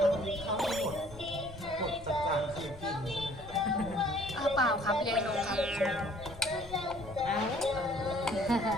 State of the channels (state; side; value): noise; left; rumble, 18 dB below the sound